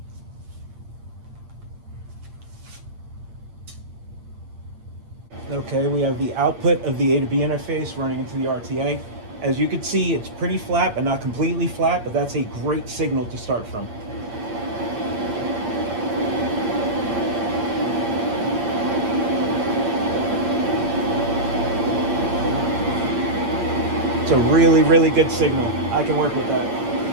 Okay, we have the output of the A to B interface running into the RTA. As you can see, it's pretty flat, but not completely flat, but that's a great signal to start from. It's a really, really good signal. I can work with that.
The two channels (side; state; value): left; late; 8.7 ms